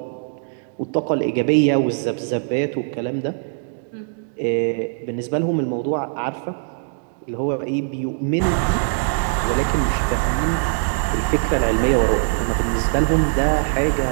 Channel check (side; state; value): left; silent; 65 dB below the other